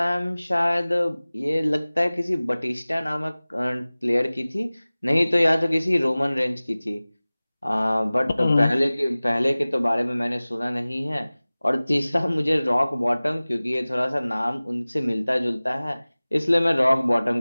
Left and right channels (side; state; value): both; inverted; correlation -0.99